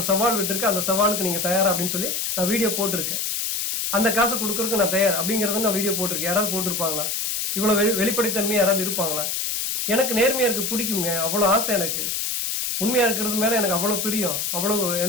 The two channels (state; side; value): noise; left; hiss, 1 dB below the sound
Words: சவால் விட்டுருக்கேன், அந்த சவாலுக்கு நீங்க தயாரா அப்படின்னு சொல்லி நான் வீடியோ போட்டிருக்கேன். அந்த காசை கொடுக்கறதுக்கு நான் தயார் அப்படிங்கறத நான் வீடியோ போட்டிருக்கேன். யாராவது போட்டிருப்பாங்களா? இவ்வளவு வெளிப்படைத்தன்மையா யாராவது இருப்பாங்களா? எனக்கு நேர்மையா இருக்கு, பிடிக்குங்க, அவ்வளவு ஆசை எனக்கு. உண்மையா இருக்கிறது மேல எனக்கு அவ்வளவு பிரியம், அவ்வளவு